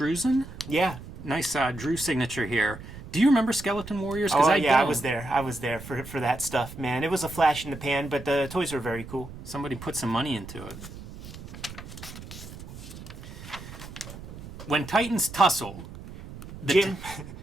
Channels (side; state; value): right; noise; rumble, 13 dB below the sound